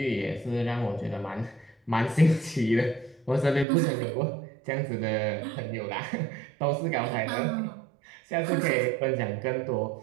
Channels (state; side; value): drops out; left; at 3.7 s